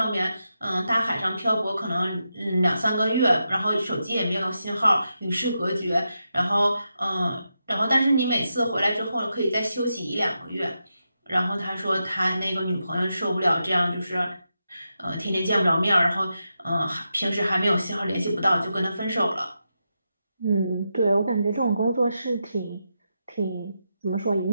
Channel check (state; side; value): inverted; both; correlation -0.87